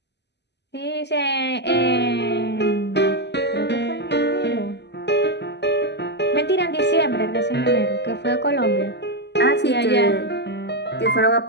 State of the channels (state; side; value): late; right; 0.50 ms